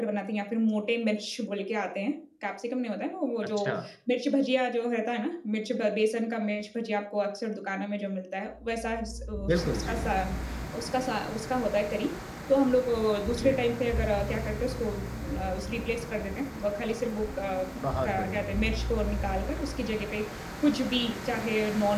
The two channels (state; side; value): identical; both; correlation 1.00